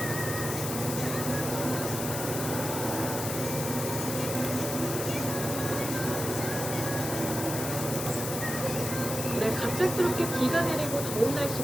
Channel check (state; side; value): noise; left; hiss, 5 dB below the sound